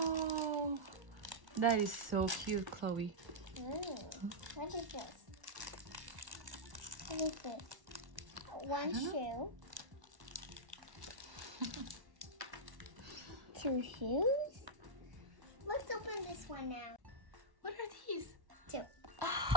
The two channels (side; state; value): left; late; 1.1 ms